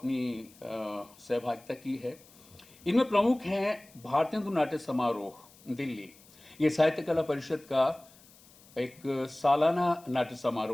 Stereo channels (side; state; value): left; noise; hiss, 25 dB below the sound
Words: सहभागिता की है। इनमें प्रमुख हैं भारतीय नाट्य समारोह दिल्ली, ये साहित्य कला परिषद का एक सालाना नाट्य